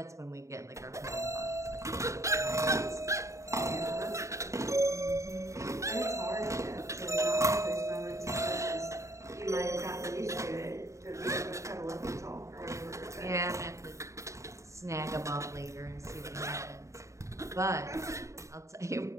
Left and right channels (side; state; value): left; late; 0.15 ms